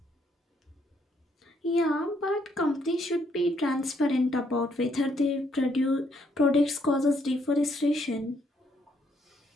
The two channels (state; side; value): normal; both; correlation 0.71